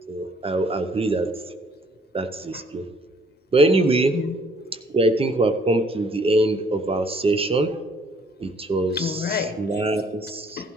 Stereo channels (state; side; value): normal; both; correlation 0.62